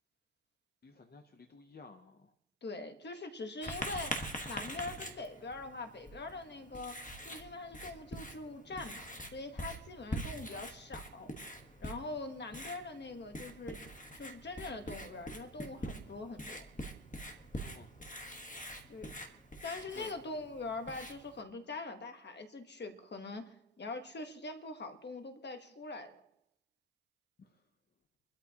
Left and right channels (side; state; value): both; normal; correlation 0.19